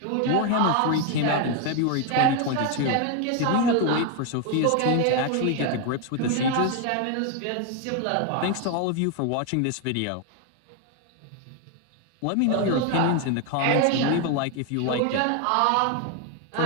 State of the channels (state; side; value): different; both; correlation 0.01